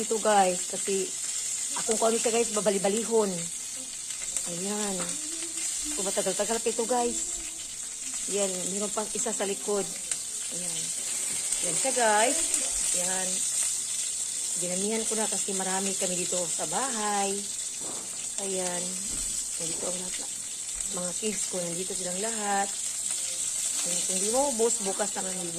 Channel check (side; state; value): both; identical; correlation 1.00